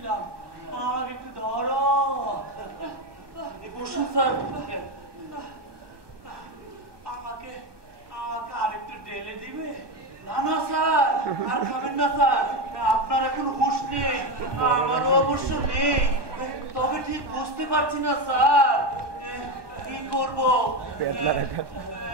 আমাকে একটু ধরো। বসুন স্যার। আমাকে আমাকে আরেকটু ঢেলে দিবে? না না স্যার, আর খাবেন না স্যার, আপনার এখন হুঁশ নেই, আমারও অবশ্য নেই। তবে ঠিক বুঝতে পারছি না স্যার কি করবো।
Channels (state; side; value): late; left; 1.1 ms